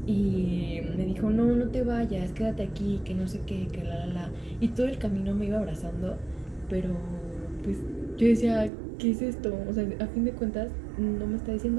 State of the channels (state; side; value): drops out; left; at 8.7 s